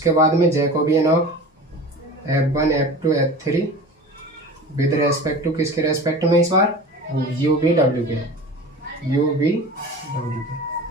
बाद में Jacobian of f1 f2 f3 with respect to किसके रेस्पेक्ट में, इस बार यू वी डब्ल्यू के।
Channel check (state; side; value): normal; both; correlation 0.36